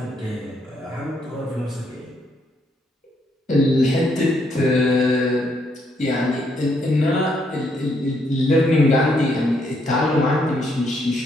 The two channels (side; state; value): both; normal; correlation 0.74